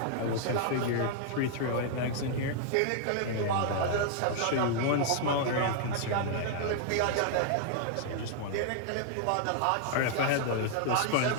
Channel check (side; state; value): both; different; correlation 0.00